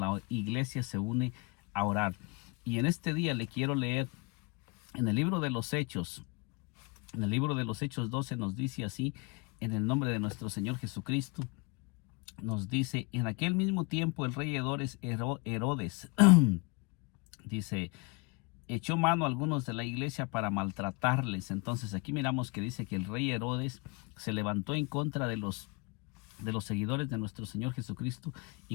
iglesia se une a orar. Y en este día le quiero leer en el libro de los Hechos. En el libro de los Hechos 12 nos dice así, en el nombre de nuestro Señor Jesucristo, nos dice: en aquel mismo tiempo el rey Herodes dice, echó mano a algunos de la iglesia para maltratarles. Entonces aquí miramos que dice que el rey Herodes se levantó en contra de los seguidores de nuestro Señor Jesucristo y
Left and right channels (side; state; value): right; quieter; 29.4 dB